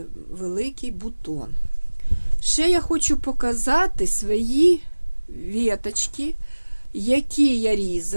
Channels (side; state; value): both; inverted; correlation -1.00